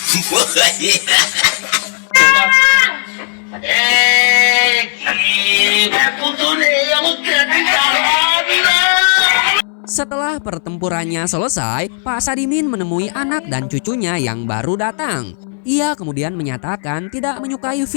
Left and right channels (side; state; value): right; silent; 62 dB below the other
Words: Setelah pertempurannya selesai, Pak Sadimin menemui anak dan cucunya yang baru datang. Ia kemudian menyatakan tidak menyukai